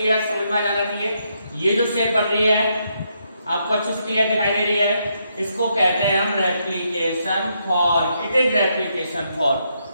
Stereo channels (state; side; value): inverted; both; correlation -0.78